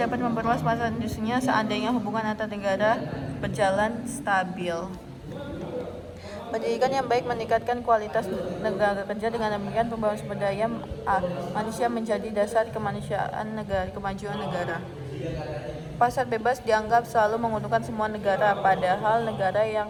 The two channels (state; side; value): identical; both; correlation 1.00